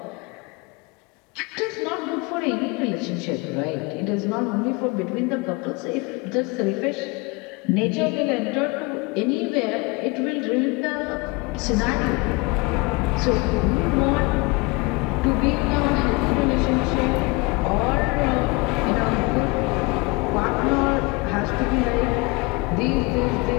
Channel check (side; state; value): right; quieter; 26.0 dB